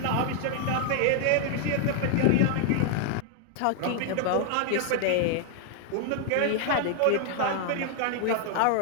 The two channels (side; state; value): both; different; correlation 0.00